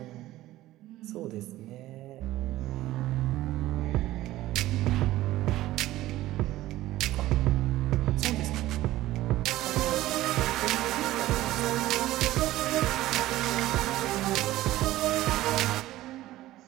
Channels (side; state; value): left; quieter; 15.8 dB